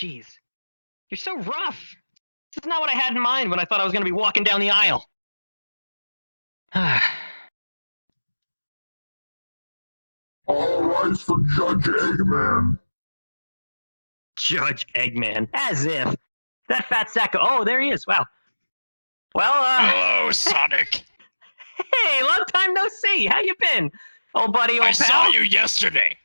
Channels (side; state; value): both; inverted; correlation -1.00